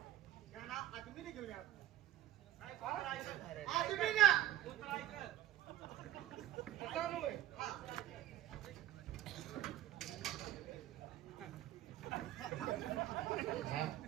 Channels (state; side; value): quieter; left; 12.9 dB